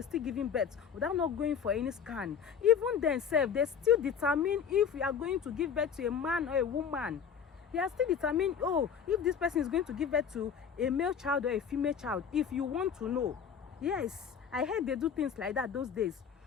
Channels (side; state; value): right; quieter; 7.3 dB